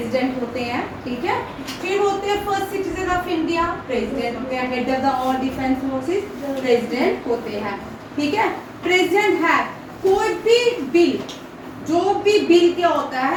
होते हैं, ठीक है। फिर होते हैं first citizen of India president होते हैं। Head of the all defence forces president होते हैं, ठीक है। प्रेसिडेंट है कोई भी बिल, जो भी बिल क्या होता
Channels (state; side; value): identical; both; correlation 1.00